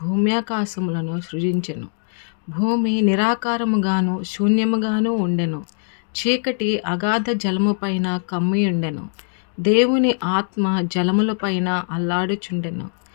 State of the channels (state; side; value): silent; right; digital silence